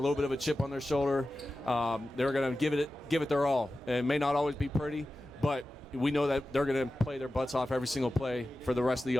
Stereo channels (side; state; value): both; normal; correlation 0.94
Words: bit of a chip on their shoulder. They're going to give it their all. And it may not always be pretty, but we know that they're going to play their butts off every single play for the rest of the